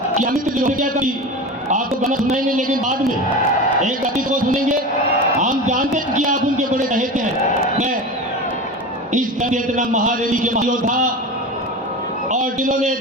कि अमित जी ने क्या कही, आपको गाना सुनाएंगे लेकिन बाद में एक गीत को सुनेंगे। हम जानते हैं कि आप उनके बड़े चहेते हैं। मैं इस चेतना महारैली के महायोद्धा और जिन्होंने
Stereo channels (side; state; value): both; normal; correlation 0.28